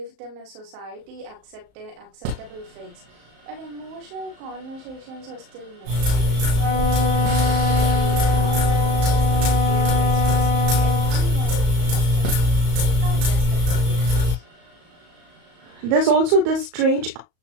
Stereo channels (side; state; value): left; late; 35 ms